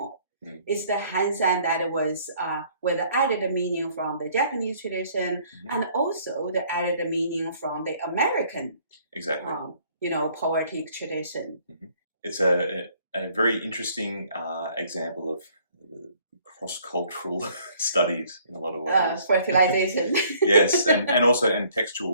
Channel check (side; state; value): both; inverted; correlation -0.60